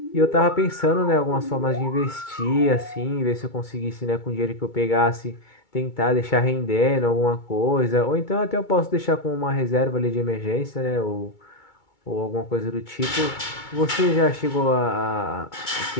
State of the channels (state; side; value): late; right; 2.2 ms